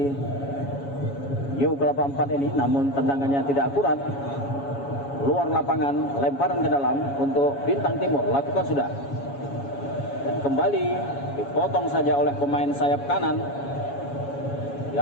New Kelapa 4 ini, namun tendangannya tidak akurat, luar lapangan, lemparan ke dalam untuk Bintang Timur, lakukan sudah, dan kembali dipotong saja oleh pemain sayap kanan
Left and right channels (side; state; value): right; late; 7.2 ms